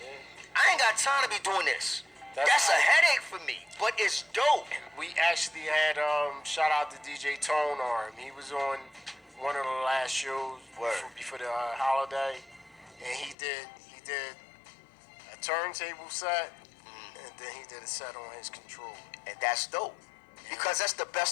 I ain't got time to be doing this. That's a headache for me, but it's dope. We actually had shout out to DJ Tone Arm. He was on one of the last shows before the holiday, and he did a turntable set, and then he did a set on his controller, and that's dope. Because that's the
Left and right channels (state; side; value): drops out; right; at 13.4 s